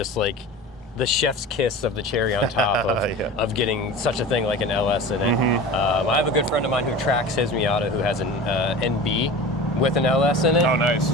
like the chef's kiss of the cherry on top of, Yeah. of getting such a thing like an LS in it. I have a good friend of mine who tracks his Miata who has an NB with an LS in it. Oh, nice.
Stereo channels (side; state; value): both; normal; correlation 0.34